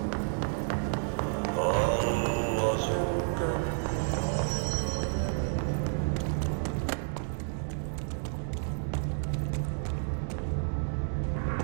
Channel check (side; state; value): left; silent; digital silence